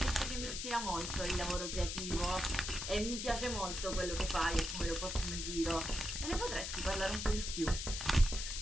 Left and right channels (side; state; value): left; noise; hiss, 4 dB below the sound